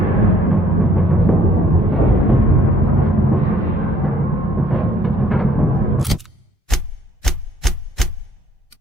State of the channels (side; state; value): both; normal; correlation 0.61